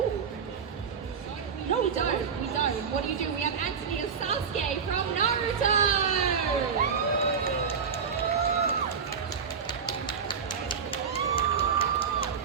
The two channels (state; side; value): quieter; left; 6.5 dB